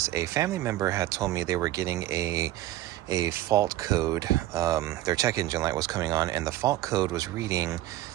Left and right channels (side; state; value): left; quieter; 15.3 dB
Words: a family member had told me they were getting a fault code. Their check engine light was coming on and the fault code was reading